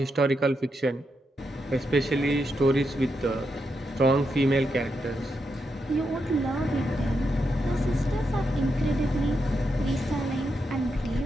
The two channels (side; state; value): both; normal; correlation 0.84